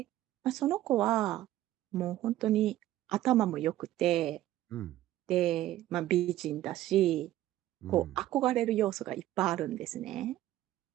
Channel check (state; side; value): quieter; left; 14.2 dB